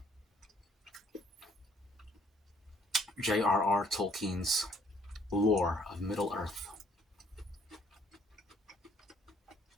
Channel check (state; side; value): normal; both; correlation 0.63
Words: J.R.R. Tolkien's lore of Middle Earth.